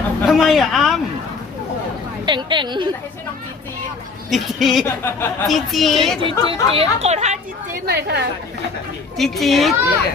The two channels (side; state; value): right; quieter; 4.4 dB